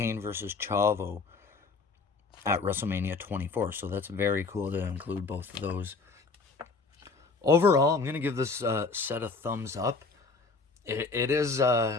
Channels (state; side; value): quieter; right; 4.2 dB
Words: versus Chavo at WrestleMania 24. So that's very cool to include both of those. Overall, I'm going to give this set a thumbs up. It is,